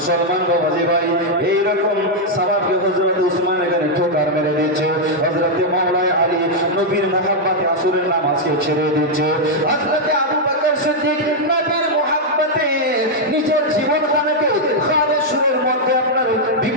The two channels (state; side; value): normal; both; correlation -0.02